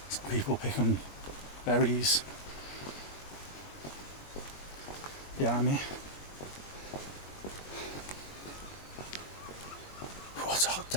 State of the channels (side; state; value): right; late; 21 ms